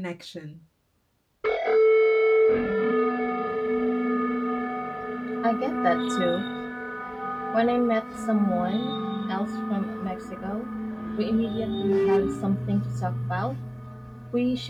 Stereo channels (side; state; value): both; identical; correlation 1.00